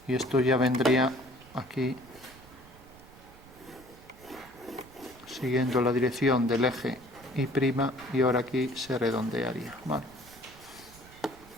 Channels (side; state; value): right; noise; rumble, 22 dB below the sound